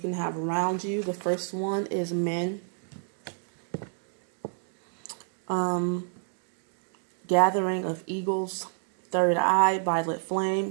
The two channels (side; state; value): left; silent; digital silence